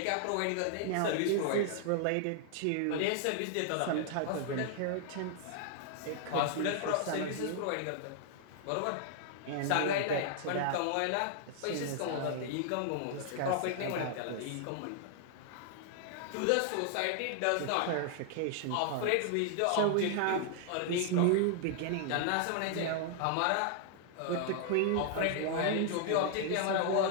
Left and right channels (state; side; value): different; both; correlation 0.00